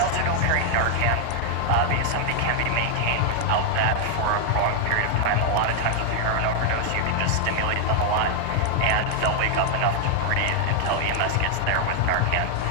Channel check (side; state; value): both; different; correlation 0.00